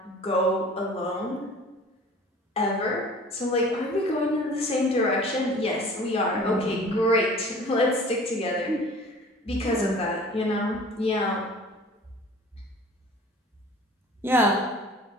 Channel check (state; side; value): normal; both; correlation 0.45